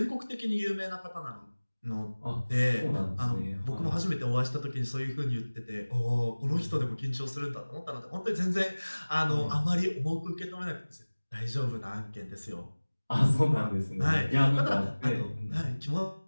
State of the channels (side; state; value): both; inverted; correlation -1.00